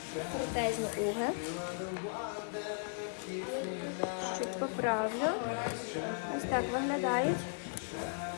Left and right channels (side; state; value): right; silent; digital silence